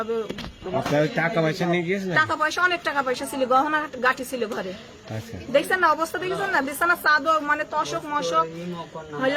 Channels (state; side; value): identical; both; correlation 1.00